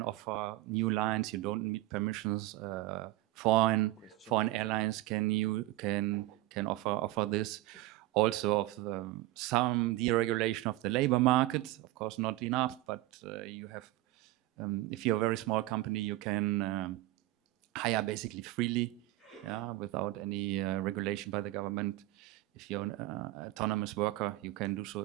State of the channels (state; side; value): quieter; left; 17.3 dB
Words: offer new lines, you don't need permissions. Foreign airlines can offer this. Also of some deregulation of the labor market. Of course, not enough, but you have, if you're a very small company, you can hire basically freely, without any regulation by the government. If you're an autonomous worker, you can do so